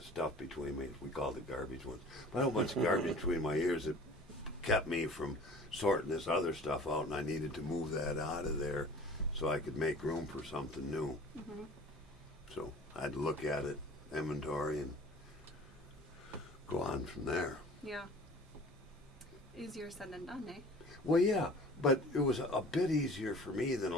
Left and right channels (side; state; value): both; normal; correlation 0.45